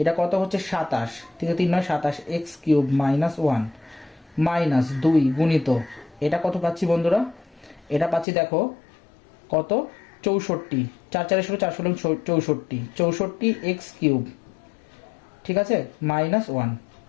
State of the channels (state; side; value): drops out; right; at 8.2 s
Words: এটা কত হচ্ছে 27, ঠিক আছে, 3 9 27 x কিউব মাইনাস 1 মাইনাস 2 গুণিত এটা কত পাচ্ছি বন্ধুরা, এটা পাচ্ছি দেখো কত 64, 4 4 16 4 16 64 x কিউব, ঠিক আছে, মাইনাস 1